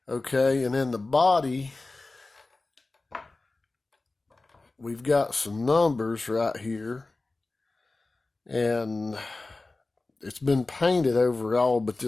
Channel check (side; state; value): right; quieter; 3.3 dB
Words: Okay, and then the body, we've got some numbers right here, and it's been painted overall, but